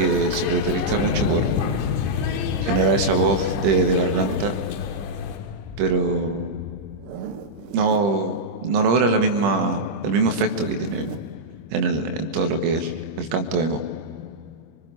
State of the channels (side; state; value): left; late; 26 ms